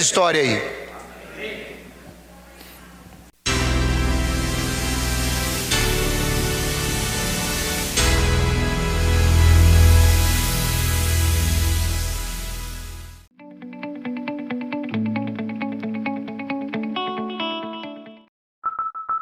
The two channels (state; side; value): identical; both; correlation 1.00